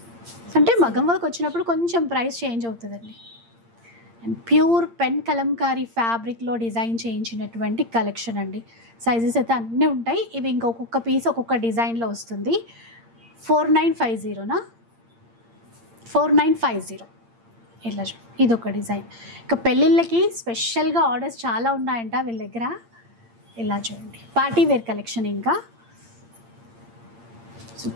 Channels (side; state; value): left; late; 8.7 ms